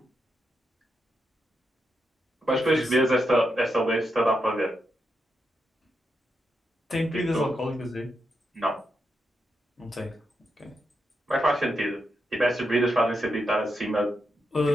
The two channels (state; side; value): normal; both; correlation 0.84